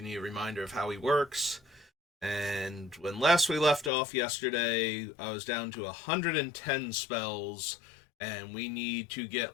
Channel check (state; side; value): drops out; right; at 3.9 s